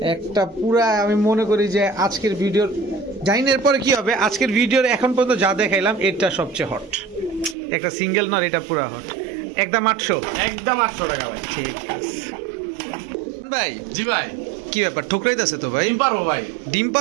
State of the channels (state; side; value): drops out; left; at 7.6 s